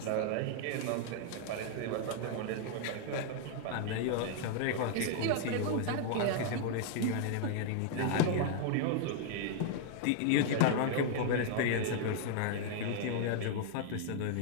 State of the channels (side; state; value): both; different; correlation 0.00